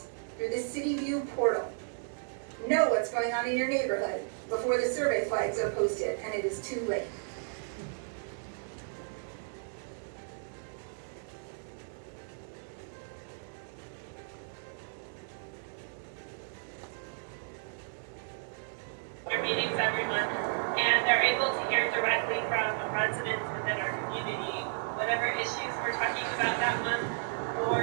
through the CityView portal. Know what's going on in your neighborhood before the survey flags are posted and it is too late. Our meetings every month, and they're able to hear directly from residents within our community, whatever issues we're talking about that month,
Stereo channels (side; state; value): left; silent; digital silence